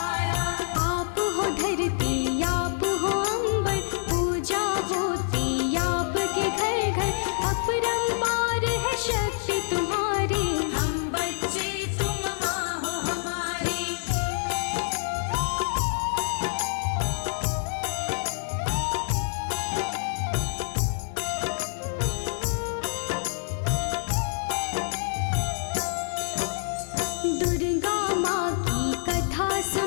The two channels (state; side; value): silent; right; 60 dB below the other